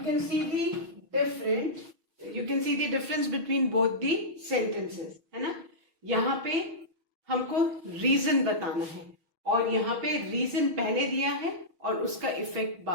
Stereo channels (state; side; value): late; left; 6.4 ms